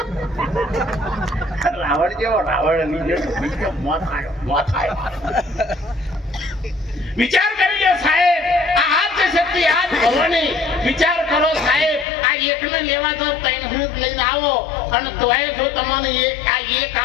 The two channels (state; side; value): drops out; right; at 12.1 s